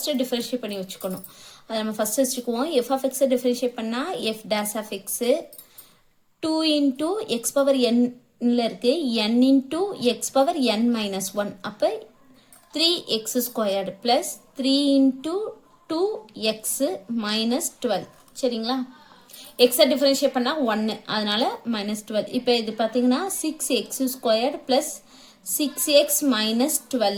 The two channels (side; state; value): both; identical; correlation 1.00